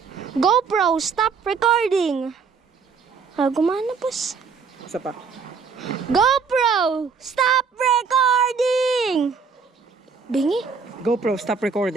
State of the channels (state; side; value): quieter; left; 5.6 dB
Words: GoPro, stop recording. Ah, gumana boss. Isa pa. GoPro, stop recording. Bingi. GoPro stop